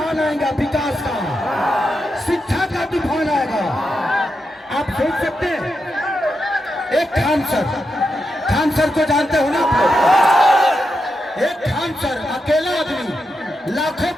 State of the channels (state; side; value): normal; both; correlation 0.86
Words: आएगा, विकास का, शिक्षा का तूफान आएगा। आप सोच सकते हैं एक खान सर को जानते हो ना आप लोग? एक खान सर अकेला आदमी लाखों